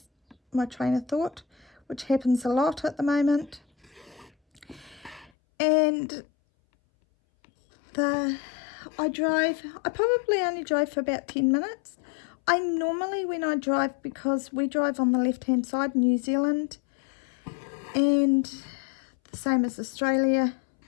my train of thought, which happens a lot at the moment. And I probably only drove for about 10 minutes. I normally, when I drive, because we drive on the left hand side, New Zealand, and the same as Australia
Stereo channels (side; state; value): right; drops out; at 5.3 s